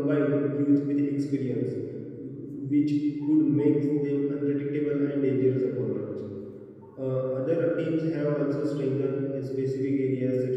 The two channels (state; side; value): identical; both; correlation 1.00